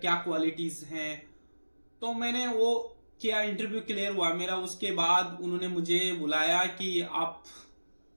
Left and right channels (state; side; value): inverted; both; correlation -1.00